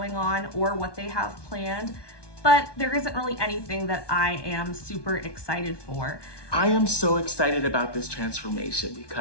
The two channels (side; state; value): right; late; 1.2 ms